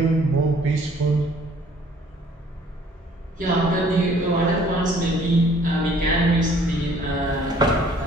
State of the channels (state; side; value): normal; both; correlation 0.57